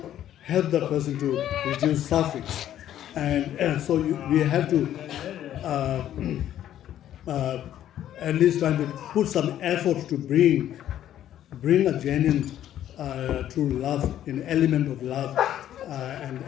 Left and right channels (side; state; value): right; quieter; 11.5 dB